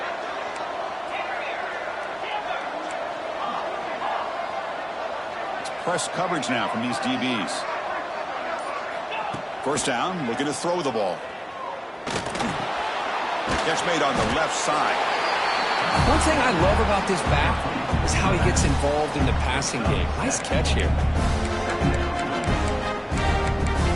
It's press coverage now from these DBs. First down, looking to throw the ball. Catch made on the left side. One thing I love about this back is how he gets involved in the passing game. Nice catch here.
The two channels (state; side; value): identical; both; correlation 1.00